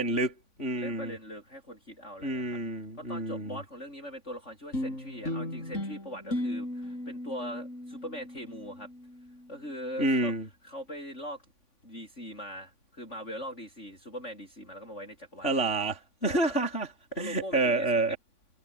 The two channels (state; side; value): late; right; 3.5 ms